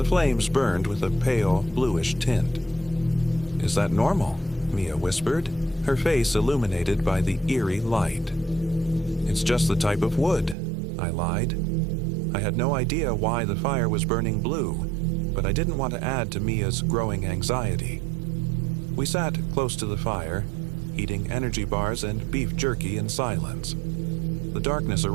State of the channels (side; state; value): left; drops out; at 10.6 s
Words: flames burned with a pale, bluish tint. "Is that normal?" Mia whispered, her face illuminated by the eerie light. "It's just the type of wood," I lied. I had no idea why the fire was burning blue, but I didn't want to add to Mia's growing anxiety. We sat close to the fire, eating energy bars and beef jerky in silence. The darkness